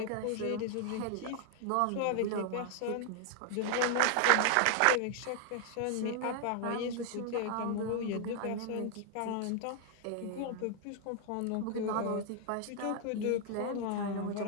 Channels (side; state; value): both; different; correlation 0.00